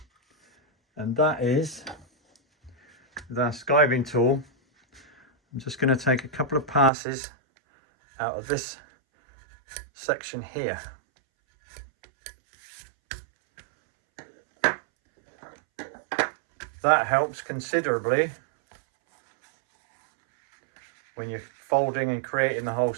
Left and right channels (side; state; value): left; drops out; at 6.9 s